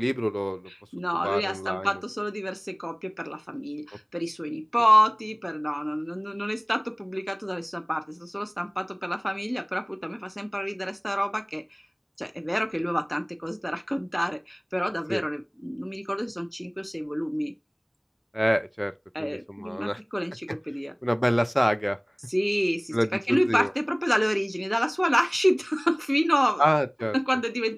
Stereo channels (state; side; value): identical; both; correlation 1.00